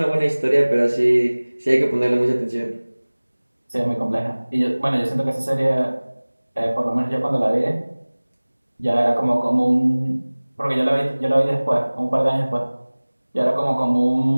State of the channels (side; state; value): both; inverted; correlation -1.00